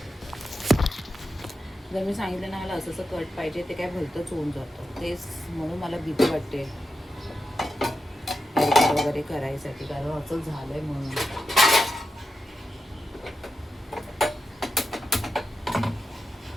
जर मी सांगितलं ना मला असं असं कट पाहिजे, ते काय भलतंच होऊन जातं. तेच म्हणून मला भीती वाटते हेअरकट वगैरे करायसाठी, कारण असं झालं आहे म्हणून.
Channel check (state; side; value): normal; both; correlation 0.89